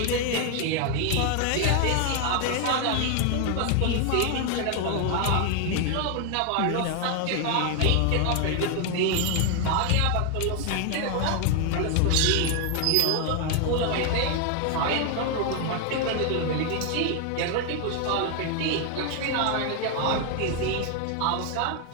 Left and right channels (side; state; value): both; different; correlation 0.01